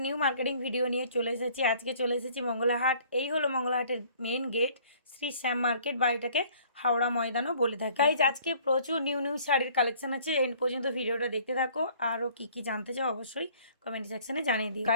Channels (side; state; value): both; inverted; correlation -0.55